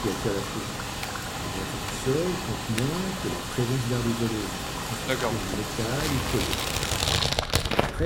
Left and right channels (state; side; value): identical; both; correlation 1.00